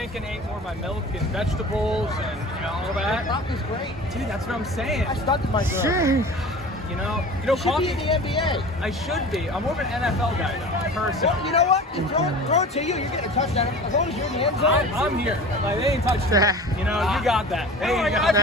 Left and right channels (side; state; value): both; normal; correlation 0.38